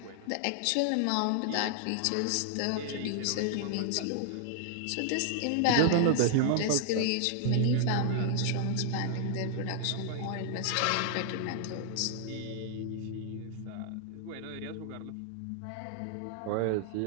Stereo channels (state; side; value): different; both; correlation -0.01